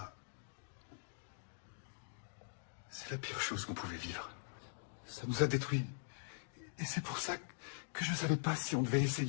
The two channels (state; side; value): silent; right; digital silence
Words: c'est la pire chose qu'on pouvait vivre. Ça nous a détruits. Et c'est pour ça que je ne savais pas si on devait